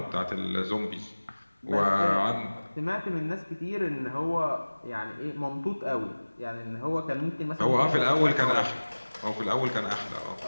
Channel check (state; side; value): inverted; both; correlation -1.00